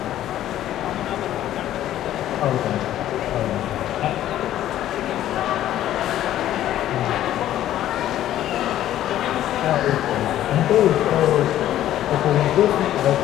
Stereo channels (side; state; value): right; quieter; 12.6 dB